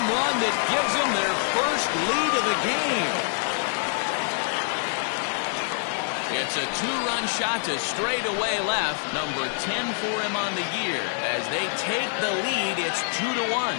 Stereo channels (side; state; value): right; silent; digital silence